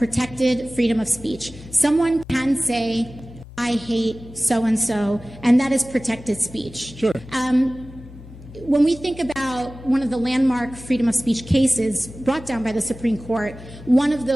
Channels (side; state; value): both; normal; correlation 0.98